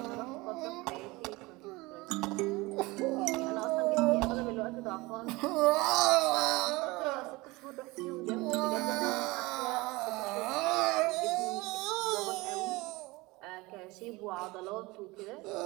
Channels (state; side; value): quieter; left; 22.6 dB